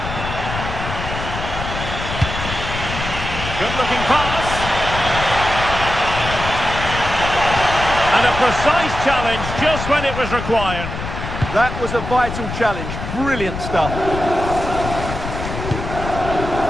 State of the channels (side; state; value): left; noise; rumble, 6 dB below the sound